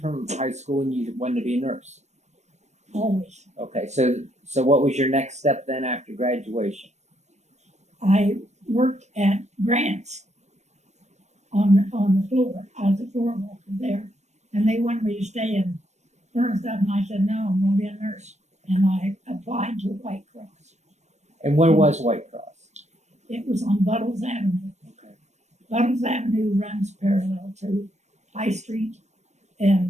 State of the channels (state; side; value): late; left; 0.33 ms